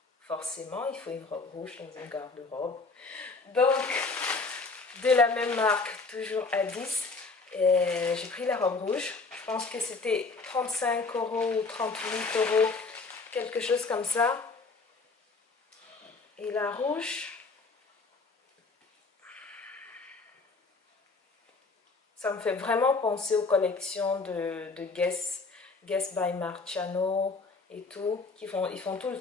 Forcément, il faut une robe rouge dans une garde-robe. Donc, de la même marque, toujours Addis. J'ai pris la robe rouge. Je pense que c'était 35 € ou 38 €, quelque chose comme ça. Et la rouge, ça me fait vraiment penser aux collections de Guess by Marciano et tout. Ils font tout le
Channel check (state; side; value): quieter; right; 4.0 dB